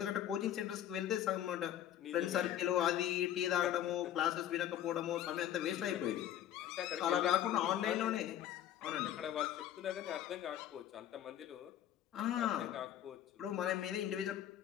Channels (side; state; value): right; quieter; 11.2 dB